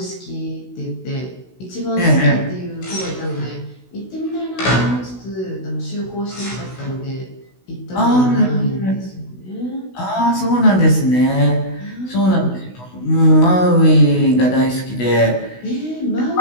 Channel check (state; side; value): late; right; 16 ms